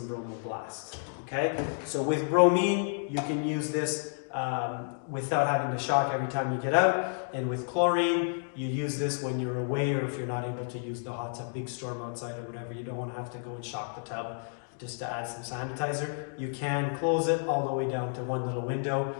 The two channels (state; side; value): silent; right; digital silence